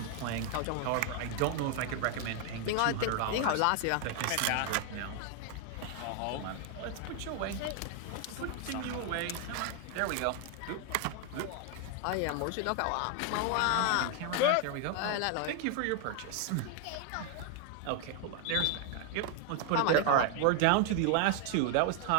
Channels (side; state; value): both; different; correlation 0.00